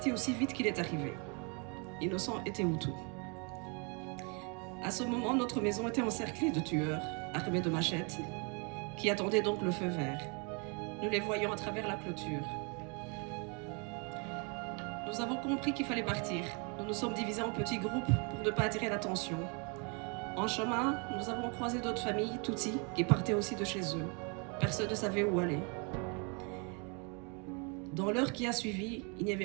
aussi vite qu'il est arrivé. Innocent était Hutu. À ce moment, notre maison était encerclée de tueurs, armés de machettes, qui attendaient donc le feu vert. Nous les voyions à travers la clôture. Nous avons compris qu'il fallait partir. Nous nous sommes divisés en petits groupes pour ne pas attirer l'attention. En chemin, nous avons croisé d'autres familles, Tutsis, qui partaient aussi de chez eux. Personne ne savait où aller. Dans l'heure qui a suivi, il n'y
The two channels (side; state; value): left; quieter; 34.1 dB